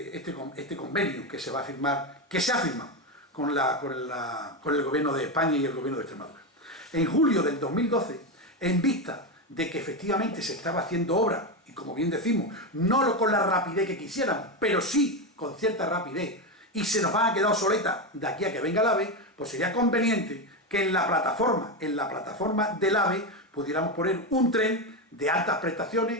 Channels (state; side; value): normal; both; correlation 0.12